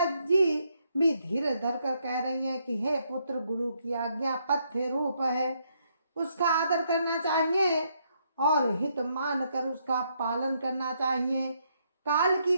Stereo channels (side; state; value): both; inverted; correlation -0.75